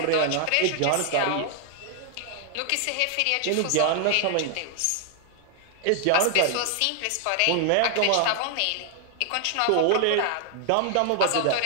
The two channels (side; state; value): both; different; correlation 0.00